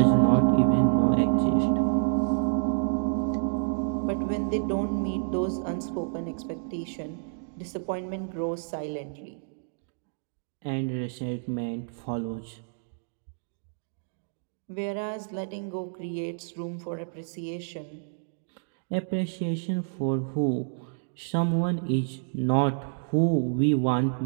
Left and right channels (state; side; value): silent; left; digital silence